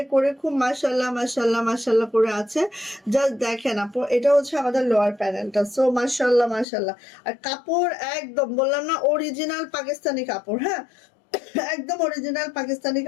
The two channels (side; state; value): right; drops out; at 6.7 s